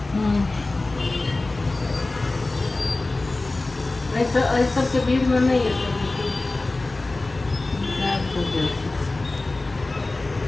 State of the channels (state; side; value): quieter; right; 3.1 dB